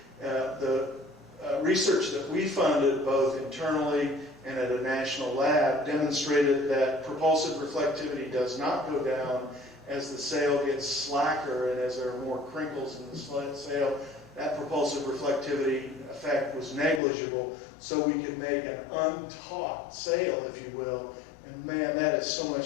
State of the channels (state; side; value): drops out; right; at 17.0 s